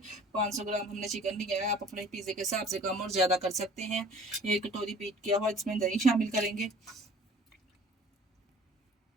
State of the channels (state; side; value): normal; both; correlation 0.49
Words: 500 ग्राम हमने चिकन लिया है। आप अपने पिज़्ज़े के हिसाब से कम और ज़्यादा कर सकते हैं। 1 कटोरी बीट किया हुआ इसमें दही शामिल करेंगे।